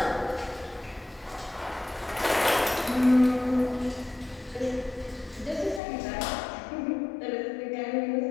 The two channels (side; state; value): right; drops out; at 5.8 s